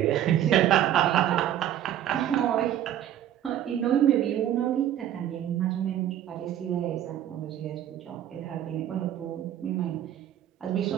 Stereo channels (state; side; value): quieter; left; 11.3 dB